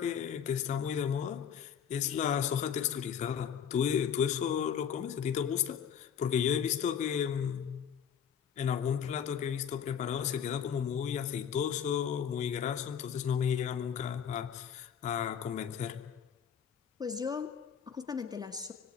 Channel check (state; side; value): quieter; right; 8.0 dB